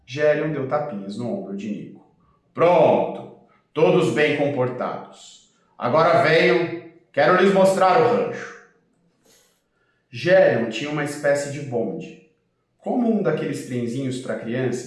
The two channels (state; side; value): identical; both; correlation 1.00